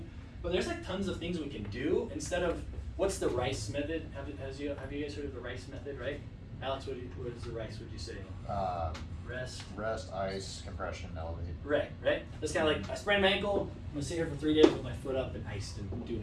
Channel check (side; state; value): both; identical; correlation 1.00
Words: But there's like tons of things we can do instead of, what's the RICE method? Have you guys heard of the RICE method, right? Alex, what is the RICE, would you say? Rest, ice, compression, elevate. Right? That's kind of like, I sprained my ankle, I'm gonna sit here for 3 days with my foot up and iced and do